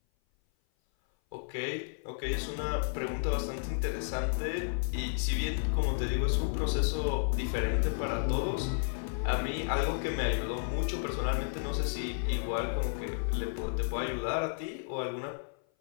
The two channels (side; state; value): right; silent; 56 dB below the other